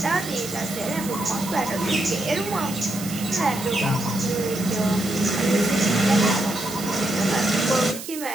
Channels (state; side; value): noise; right; hiss, 11 dB below the sound